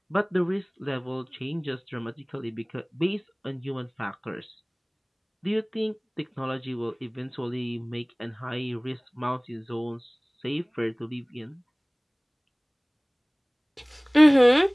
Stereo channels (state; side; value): identical; both; correlation 1.00